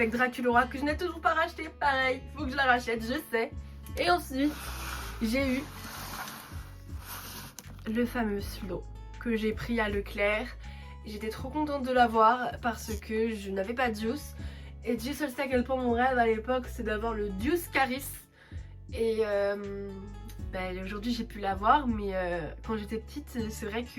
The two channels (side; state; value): both; identical; correlation 1.00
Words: Draculaura que je n'ai toujours pas racheté. Pareil, faut que je la rachète, je sais. Et ensuite, j'ai eu le fameux Slow que j'ai pris à Leclerc. J'étais trop contente de l'avoir parce que je n'avais pas Deuce. Et Dieu seul sait à quel point mon rêve à l'époque c'est d'avoir le Deuce Caris. Et aujourd'hui j'ai pu l'avoir, mais quand j'étais petite c'est vrai